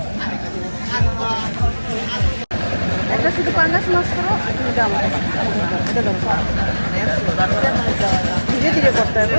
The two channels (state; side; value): inverted; both; correlation -1.00